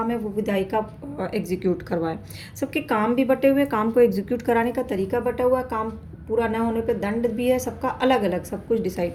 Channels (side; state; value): both; identical; correlation 1.00